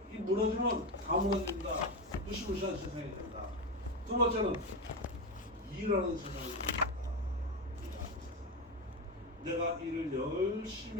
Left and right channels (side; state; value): both; normal; correlation 0.15